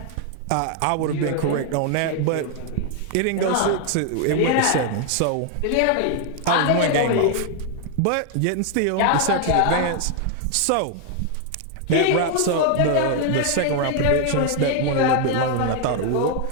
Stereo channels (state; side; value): different; both; correlation 0.00